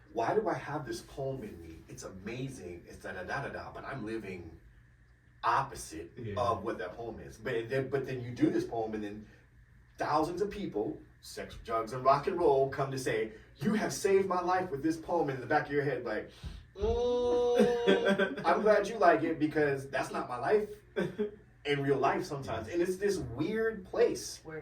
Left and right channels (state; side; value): identical; both; correlation 1.00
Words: why do I have this poem in me? It's amazing. It's da da da da da. But I'm living opposite of what that poem is. But then you do this poem, and then thousands of people, sex, drugs, and rock and roll, come to say, "You have saved my life with this poem." And in the back of your head, like, I'm glad you like it because that's not my life in real life sometimes. And it's this weird place